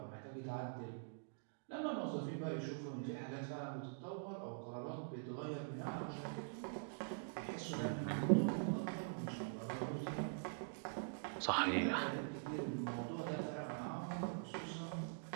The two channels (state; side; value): silent; left; digital silence